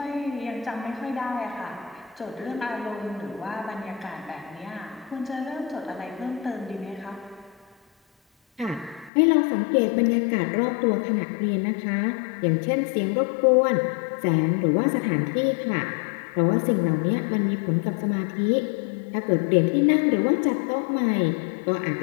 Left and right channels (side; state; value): right; drops out; at 9.1 s